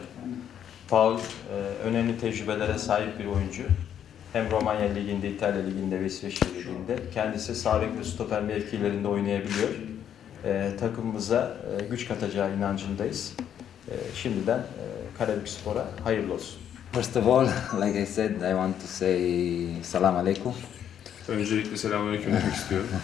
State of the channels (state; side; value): quieter; right; 9.5 dB